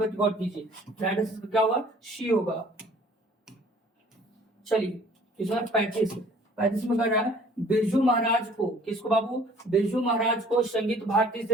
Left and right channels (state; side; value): normal; both; correlation 0.54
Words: गौर कीजिए, राइट आंसर क्या होगा, सी होगा। चलिए क्वेश्चन 35 35 में कर रहा है, बिरजू महाराज को, किसको बाबू, बिरजू महाराज को संगीत भारती